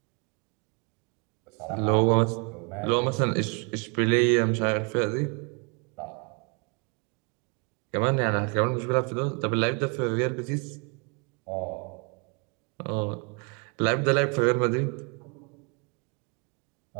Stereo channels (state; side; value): quieter; left; 33.9 dB